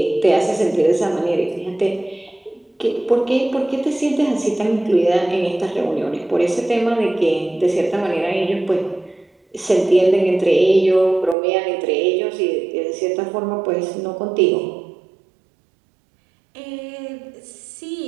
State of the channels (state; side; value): drops out; left; at 11.4 s